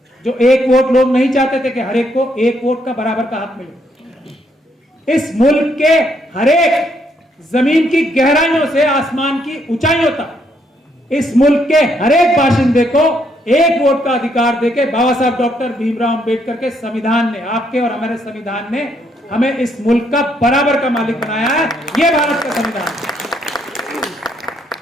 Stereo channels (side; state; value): both; normal; correlation 0.73